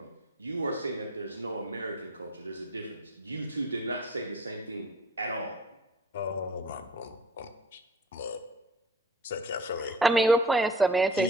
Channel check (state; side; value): normal; both; correlation 0.45